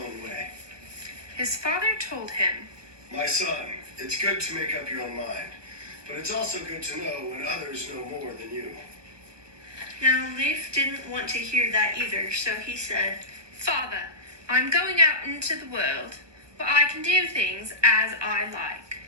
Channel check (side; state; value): left; late; 1.2 ms